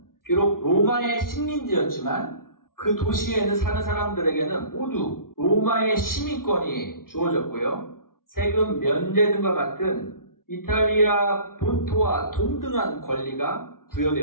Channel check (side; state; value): right; late; 0.92 ms